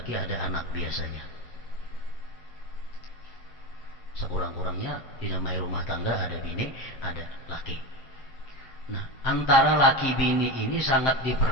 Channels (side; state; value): right; late; 7.7 ms